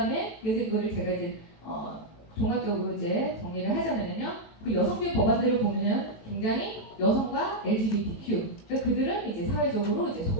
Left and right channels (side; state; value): right; late; 18 ms